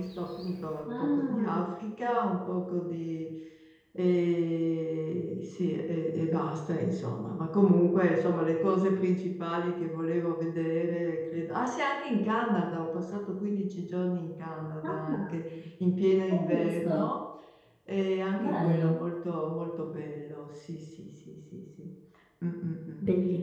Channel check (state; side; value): identical; both; correlation 1.00